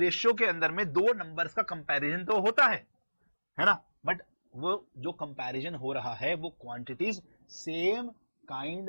के अंदर में दो नंबर्स का कंपैरिजन तो होता है ना, बट वो जो कंपैरिजन हो रहा है वो क्वांटिटीज सेम काइंड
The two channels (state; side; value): inverted; both; correlation -1.00